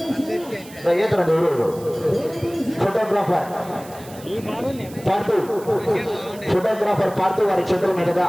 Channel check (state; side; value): noise; right; hiss, 20 dB below the sound